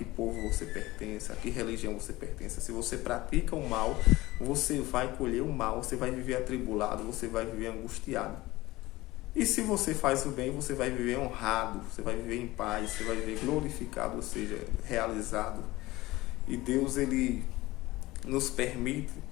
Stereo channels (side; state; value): right; quieter; 19.0 dB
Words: povo você pertence, a que religião você pertence, se você pratica o mal, você vai colher o mal, você vai viver atribulado, você vai viver angustiado. E se você faz o bem, você vai viver honrado, você vai viver em paz, você vai viver glorificado, ou seja, realizado. E Deus, ele nos permite